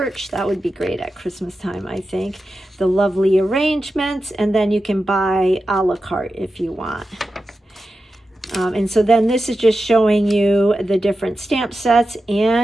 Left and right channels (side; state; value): both; normal; correlation 0.91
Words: That would be great at Christmas time, I think. The Lovely Arrangements. And then you can buy a la carte if you want. And so then this is just showing you the different stamp sets